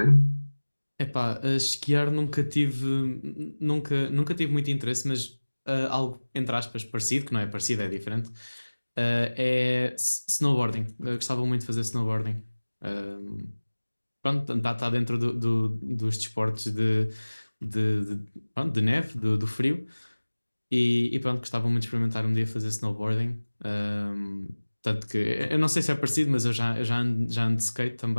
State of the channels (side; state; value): both; inverted; correlation -1.00